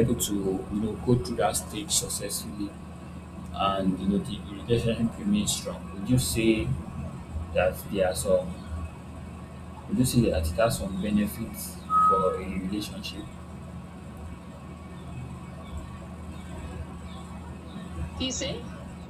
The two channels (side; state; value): both; identical; correlation 1.00